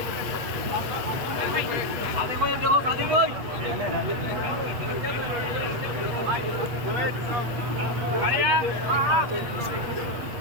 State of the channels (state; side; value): late; left; 8.5 ms